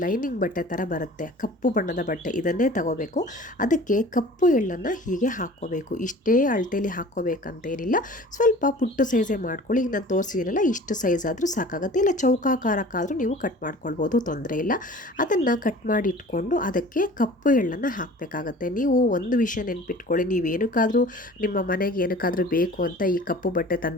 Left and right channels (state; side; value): normal; both; correlation 0.44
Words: ಲೈನಿಂಗ್ ಬಟ್ಟೆ ಥರ ಬರುತ್ತೆ, ಕಪ್ಪು ಬಣ್ಣದ ಬಟ್ಟೆ, ಇದನ್ನೇ ತಗೋಬೇಕು. ಅದಕ್ಕೆ ಕಪ್ಪು ಎಳ್ಳನ್ನು ಹೀಗೆ ಹಾಕ್ಕೋಬೇಕು. ಇಷ್ಟೇ ಅಳತೆಯಲ್ಲಿ ಹಾಕ್ಕೋಬೇಕಂತೇನಿಲ್ಲ, ಸ್ವಲ್ಪ ಪುಟ್ಟು ಸೈಜೇ ಮಾಡ್ಕೊಳ್ಳಿ. ಈಗ ನಾನು ತೋರಿಸಿದ್ದೀನಲ್ಲ, ಇಷ್ಟು ಸೈಜ್ ಆದರೂ ಸಾಕಾಗುತ್ತೆ, ಇಲ್ಲ ಚೌಕಾಕಾರಕ್ಕಾದರೂ ನೀವು ಕಟ್ ಮಾಡ್ಕೊಳ್ಬೋದು, ತೊಂದರೆ ಇಲ್ಲ. ಅದನ್ನು ಕಟ್ ಮಾಡಿ ಇಟ್ಕೊಂಡು ಅದಕ್ಕೆ ಕಪ್ಪು ಎಳ್ಳನ್ನು ಹಾಕಬೇಕಾಗತ್ತೆ. ನೀವು ಒಂದು ವಿಷಯ ನೆನ್ಪಿಟ್ಕೊಳ್ಳಿ, ನೀವೇನಕ್ಕಾದರೂ ನಿಮ್ಮ ಮನೆಗೆ ಏನಕ್ಕಾದರೂ ಬೇಕು ಅಂತ ಈ ಕಪ್ಪು ಬಟ್ಟೆ